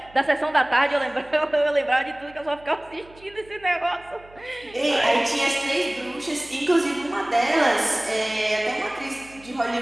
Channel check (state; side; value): noise; right; hum, 25 dB below the sound